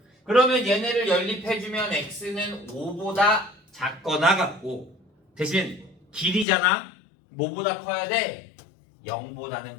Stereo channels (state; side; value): drops out; right; at 6.5 s